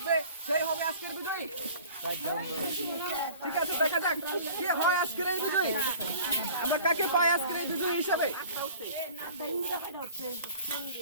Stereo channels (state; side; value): inverted; both; correlation -0.47